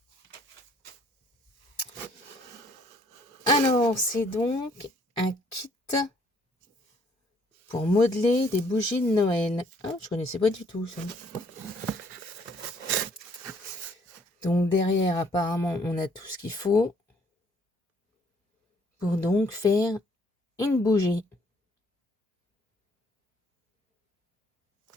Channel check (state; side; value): normal; both; correlation 0.64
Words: Alors, c'est donc un kit pour modeler des bougies de Noël. Ah, je connaissais pas du tout ça. Donc derrière, apparemment, on a tout ce qu'il faut pour donc faire une bougie.